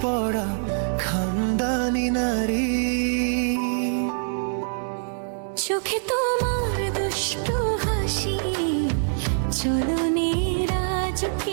পরা খানদানি নারী, চোখে তোমার দুষ্টু হাসি, চলনে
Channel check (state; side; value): silent; left; digital silence